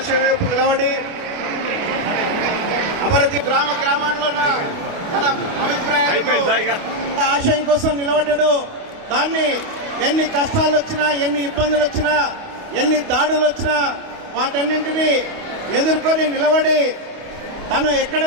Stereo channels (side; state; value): left; late; 29 ms